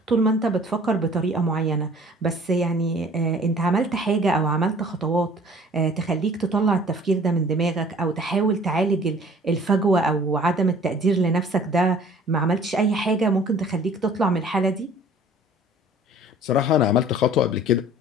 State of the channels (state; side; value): normal; both; correlation 0.51